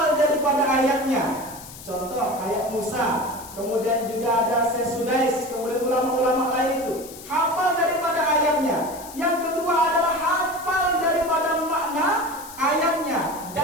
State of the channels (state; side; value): noise; left; hiss, 16 dB below the sound